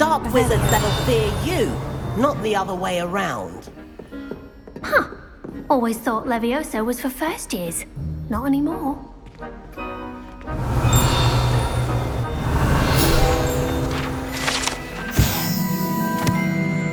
wizards that'll fear you, not the other way around. Huh. Always thought Levioso was for first years. Not anymore.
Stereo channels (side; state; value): both; identical; correlation 1.00